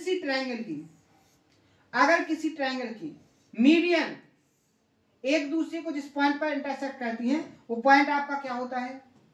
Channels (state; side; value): identical; both; correlation 1.00